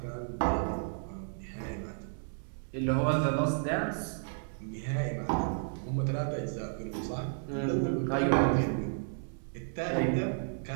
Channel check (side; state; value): left; silent; digital silence